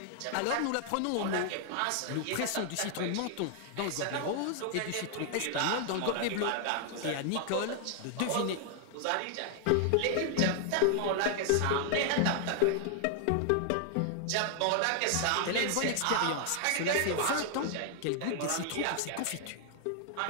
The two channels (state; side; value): different; both; correlation 0.00